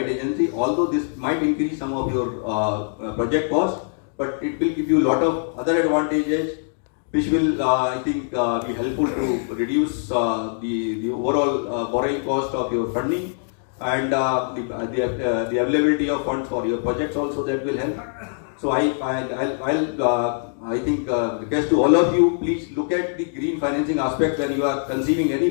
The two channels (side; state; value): right; silent; digital silence